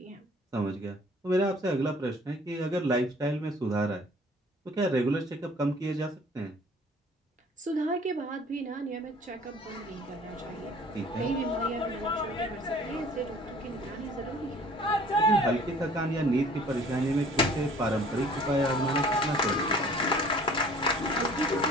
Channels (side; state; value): both; normal; correlation 0.52